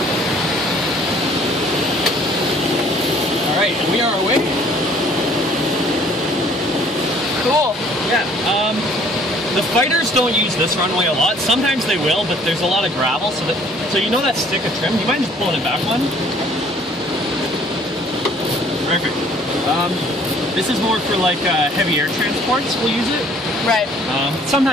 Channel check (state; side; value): normal; both; correlation 0.57